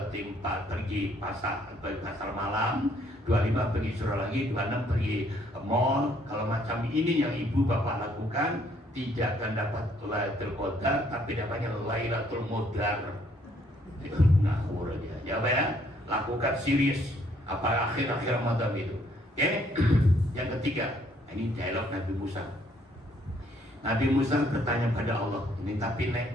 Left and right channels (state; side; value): normal; both; correlation 0.66